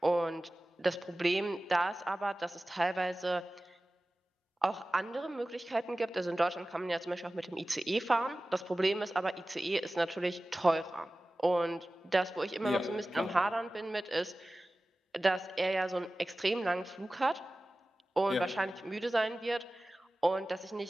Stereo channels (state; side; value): normal; both; correlation 0.96